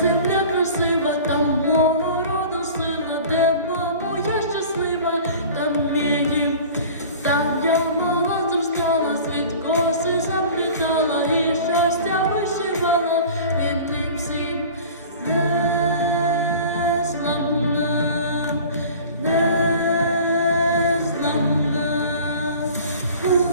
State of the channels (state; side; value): inverted; both; correlation -0.42